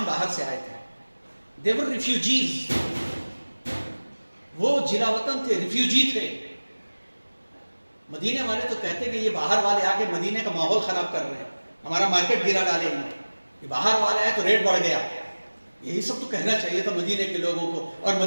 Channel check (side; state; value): both; inverted; correlation -1.00